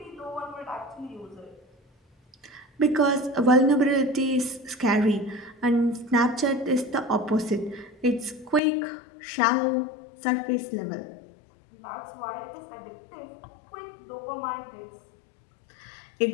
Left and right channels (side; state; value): right; drops out; at 8.6 s